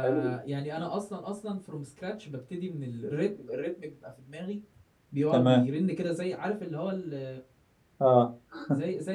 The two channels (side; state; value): both; identical; correlation 1.00